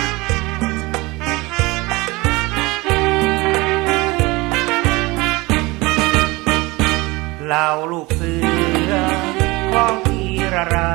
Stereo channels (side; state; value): left; quieter; 23.0 dB